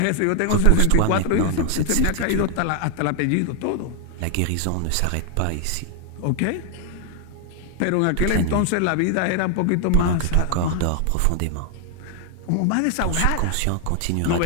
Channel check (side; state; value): both; different; correlation 0.00